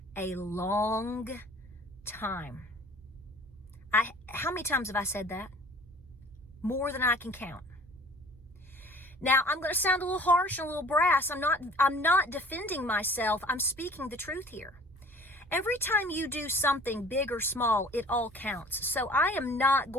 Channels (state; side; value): normal; both; correlation 0.49